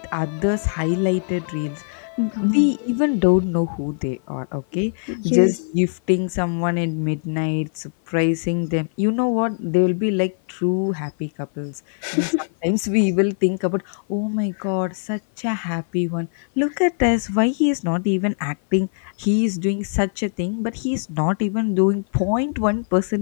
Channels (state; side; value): silent; right; 56 dB below the other